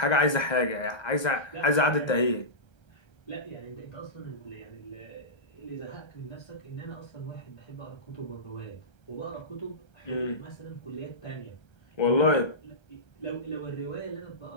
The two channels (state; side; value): late; right; 1.3 ms